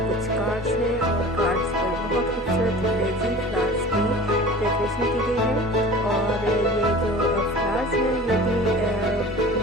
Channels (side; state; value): both; normal; correlation 0.40